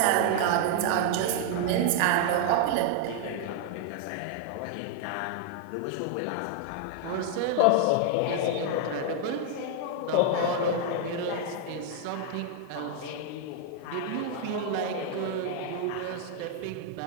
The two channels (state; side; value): different; both; correlation 0.00